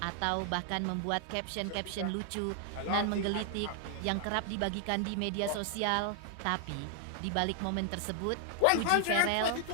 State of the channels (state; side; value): different; both; correlation 0.00